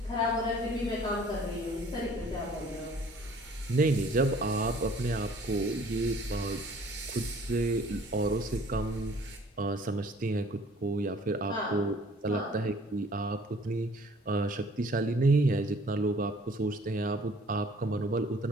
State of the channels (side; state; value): both; normal; correlation 0.54